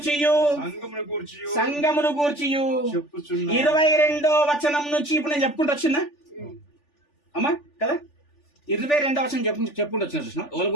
సంఘమును గూర్చియు 22వ వచనం నుంచి ఇప్పుడు నేను చెప్పుకుంటూ వచ్చిందా అమ్మా? కదా, 22వ వచనం చెప్పుకుంటూ వచ్చిన. చూసిన వాళ్ళ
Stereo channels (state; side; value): late; right; 3.4 ms